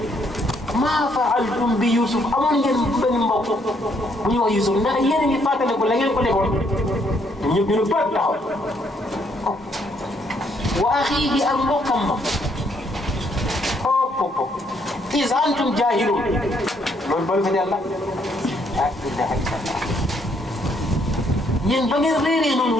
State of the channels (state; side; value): normal; both; correlation 0.70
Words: maa faaltum bi Yusuf amoon ngeen benn mbokk bu ñuy wax Yusuf ndax yéen a ngi fàttaliku la ngeen ko defoon ñëpp ñu ne bët taxaw wa axiihi ak mbokkam ma hop is antum jaahilun loolu balu fa yàlla ah ilaha illallah yéen ba ngeen réeree noonu